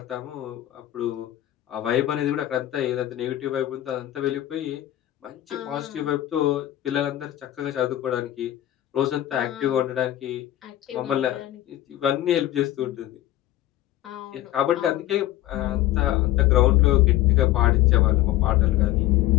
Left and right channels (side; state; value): right; quieter; 14.2 dB